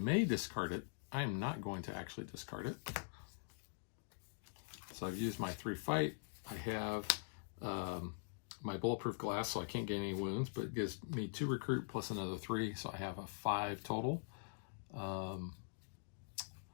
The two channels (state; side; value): silent; right; digital silence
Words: discard it. I am not going to actually discard it. So I've used my 3 fight, I have my bulletproof glass, so I can't gain any wounds, but it gives me 2 recruit plus another 3, so I have a 5 total.